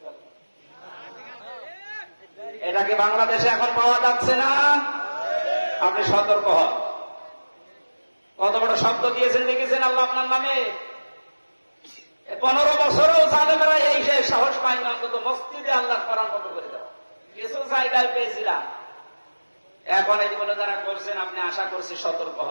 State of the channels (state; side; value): inverted; both; correlation -1.00